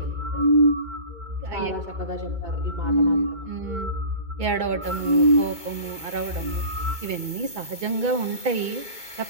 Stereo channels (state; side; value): late; left; 2.2 ms